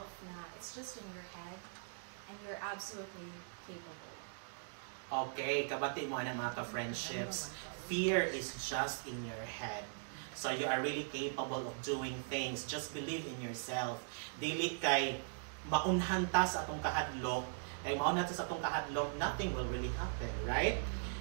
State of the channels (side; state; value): left; silent; digital silence